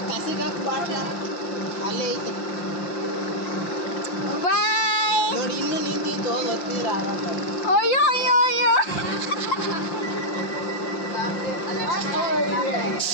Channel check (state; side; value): late; right; 5.8 ms